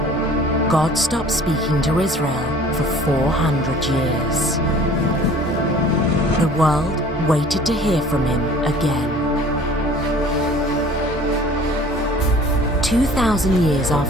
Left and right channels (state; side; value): normal; both; correlation 0.48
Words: God stopped speaking to Israel for 400 years. The world waited to hear from him again. 2,000 years